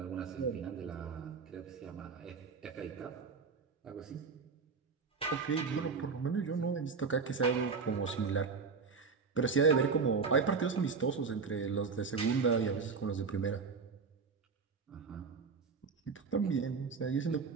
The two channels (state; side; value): quieter; left; 5.1 dB